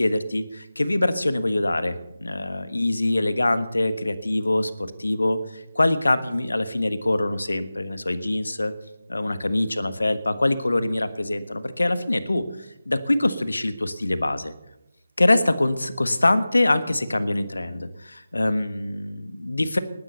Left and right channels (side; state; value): both; inverted; correlation -0.97